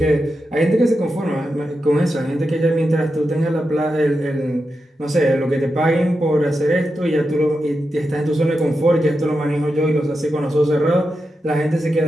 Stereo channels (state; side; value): normal; both; correlation 0.88